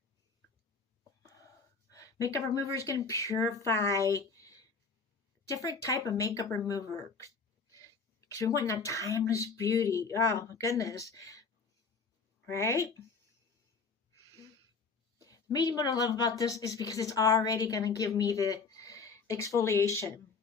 Makeup remover is going to purify different type of makeup remover because we want that timeless beauty. Oh my goodness. Right? Maybe what I love about this is because it's already going to give me the exfoliation.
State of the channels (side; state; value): right; quieter; 4.8 dB